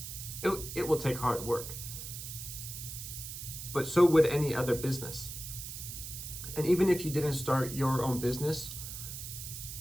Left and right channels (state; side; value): noise; right; hiss, 8 dB below the sound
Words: It will take hard work. But so would any other business. And even if you didn't start your own business,